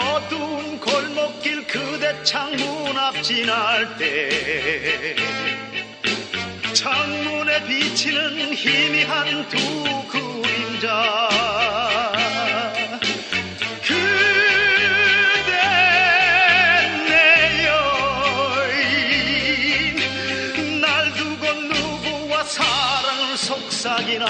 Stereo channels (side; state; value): both; identical; correlation 1.00